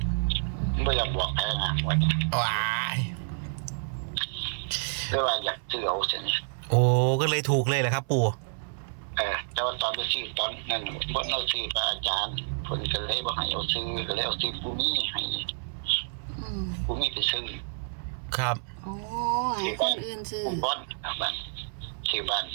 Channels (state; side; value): silent; left; 59 dB below the other